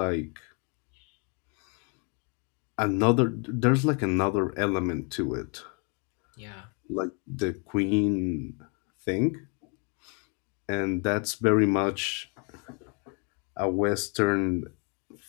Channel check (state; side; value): quieter; right; 36.4 dB